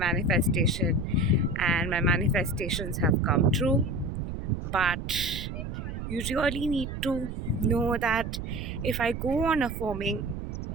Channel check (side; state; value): right; noise; rumble, 6 dB below the sound